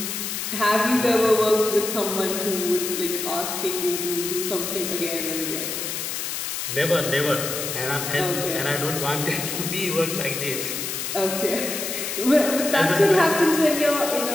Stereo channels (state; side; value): noise; left; hiss, 4 dB below the sound